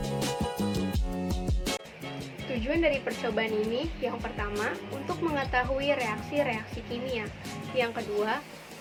Tujuan dari percobaan ini yang pertama, untuk mengetahui reaksi-reaksi kimia. Yang kedua,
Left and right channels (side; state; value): both; identical; correlation 1.00